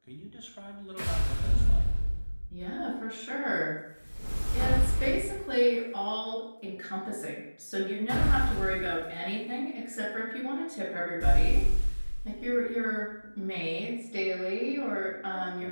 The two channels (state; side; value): inverted; both; correlation -1.00